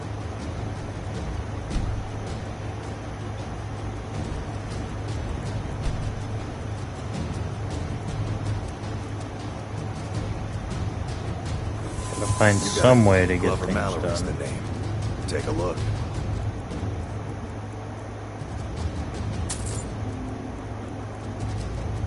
Find some way to get things done. The name. Take a look.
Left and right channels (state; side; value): identical; both; correlation 1.00